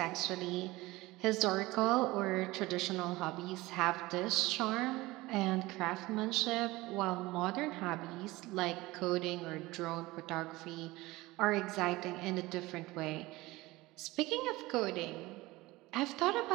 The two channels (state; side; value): quieter; left; 20.0 dB